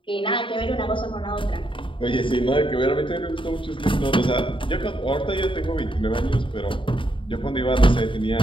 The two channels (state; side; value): late; right; 0.25 ms